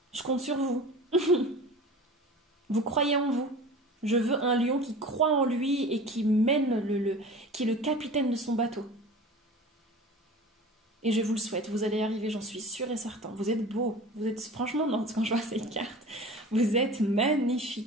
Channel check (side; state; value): both; normal; correlation 0.38